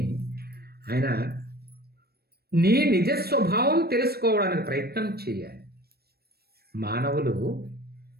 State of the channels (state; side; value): late; left; 0.46 ms